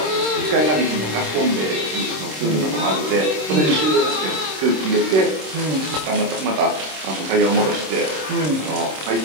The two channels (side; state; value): left; late; 26 ms